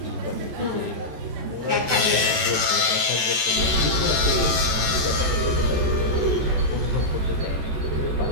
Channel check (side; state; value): left; late; 14 ms